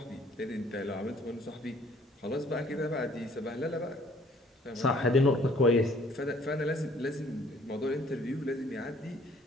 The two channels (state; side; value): normal; both; correlation 0.59